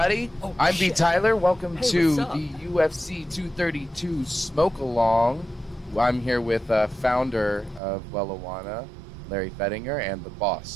I'm imbtyler. Welcome to what's up? the UFC 232 Smokealong. I'm here with founder of Wellijuana, Larry Fettinger, and the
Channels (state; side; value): drops out; left; at 7.8 s